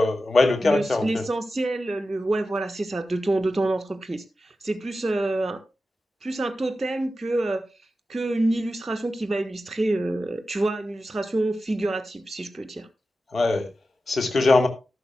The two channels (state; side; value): normal; both; correlation 0.92